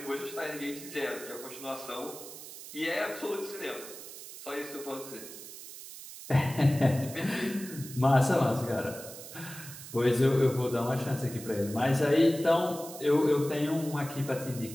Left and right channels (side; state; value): right; noise; hiss, 13 dB below the sound